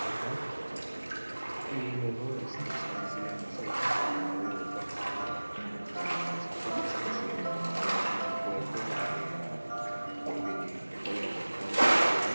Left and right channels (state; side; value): inverted; both; correlation -1.00